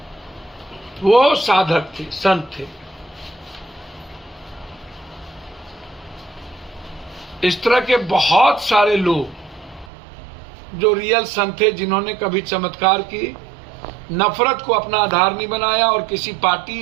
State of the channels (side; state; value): left; drops out; at 9.9 s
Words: वो साधक थे, संत थे। इस तरह के बहुत सारे लोग जो रियल संत थे, जिन्होंने कभी चमत्कार की नफरत को अपना आधार नहीं बनाया और किसी पार्टी